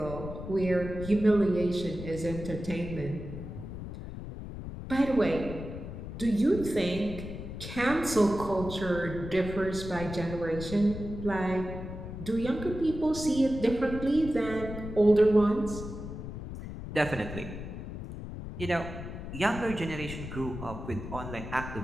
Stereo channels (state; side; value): noise; left; rumble, 9 dB below the sound